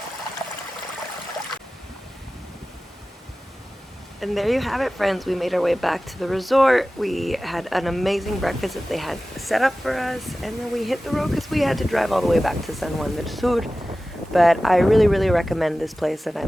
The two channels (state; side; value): normal; both; correlation 0.96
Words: And there you have it, friends. We made our way back to the resort. We had an amazing breakfast that they had set up for us, and then we hit the road because we had to drive all the way back to San Juan del Sur. But I really, really recommend this place, and I